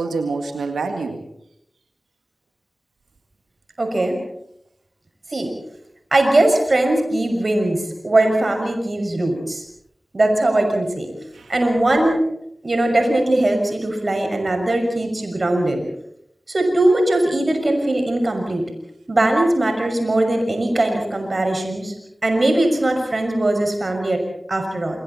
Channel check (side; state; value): both; normal; correlation 0.97